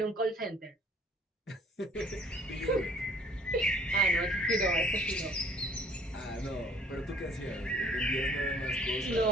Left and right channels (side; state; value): both; normal; correlation 0.56